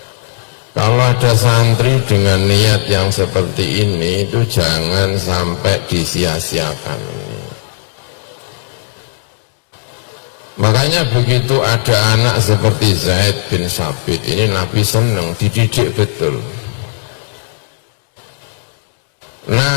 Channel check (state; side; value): silent; right; digital silence